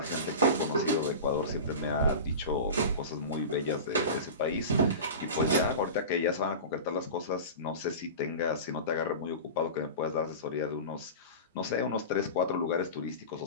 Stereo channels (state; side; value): inverted; both; correlation -0.30